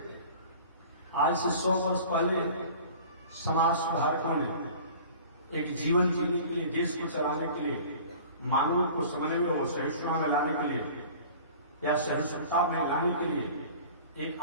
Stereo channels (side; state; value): both; inverted; correlation -0.43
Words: आज से 100 वर्ष पहले समाज सुधारकों ने एक जीवन जीने के लिए, देश को चलाने के लिए, मानवों को समन्वय और सहिष्णुता में लाने के लिए या सहिष्णुता में लाने के लिए एक